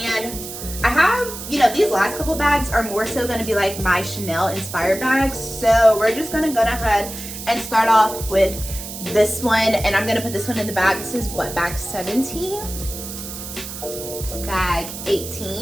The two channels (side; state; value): right; noise; hiss, 10 dB below the sound